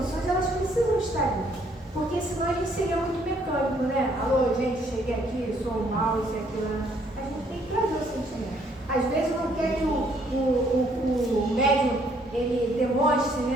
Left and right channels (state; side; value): normal; both; correlation 0.66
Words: elas precisam estar ali. Porque senão a gente seria muito mecânico, né? Alô, gente, cheguei aqui, sou mal, isso e aquilo. A gente tem que trazer o sentimento. Às vezes não quer que o médium, ele demonstre,